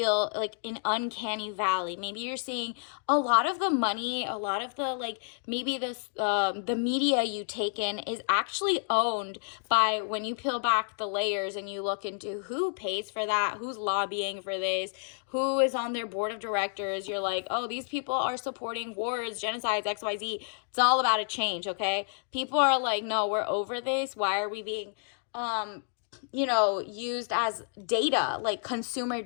like an uncanny valley. Maybe you're seeing a lot of the money, a lot of the like maybe this the media you take in is actually owned by, when you peel back the layers and you look into who pays for that, who's lobbying for this, who is on their board of directors. You're like, oh, these people are supporting wars, genocides, XYZ. It's all about a change, okay? People are like, no, we're over this. Why are we being used as data, like consumer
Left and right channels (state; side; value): silent; right; digital silence